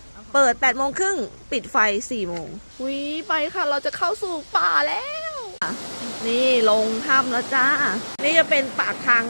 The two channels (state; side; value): inverted; both; correlation -1.00